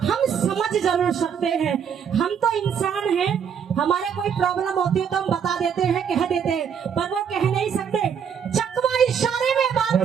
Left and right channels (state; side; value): quieter; left; 7.5 dB